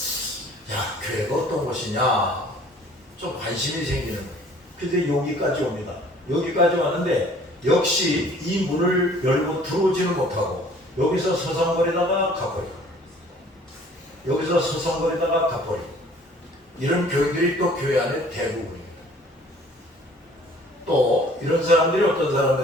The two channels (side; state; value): both; normal; correlation 0.53